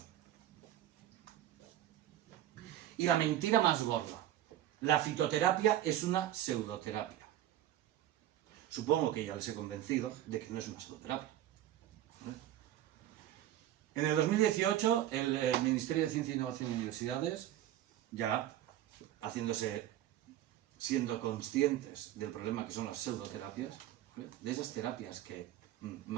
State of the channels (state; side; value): quieter; left; 12.7 dB